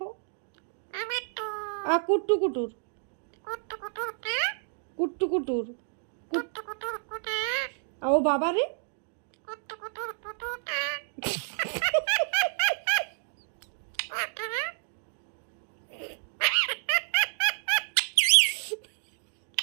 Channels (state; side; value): silent; left; digital silence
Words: আর কুট্টু কুটুর, কুট্টু কুটুর, ও বাবা রে,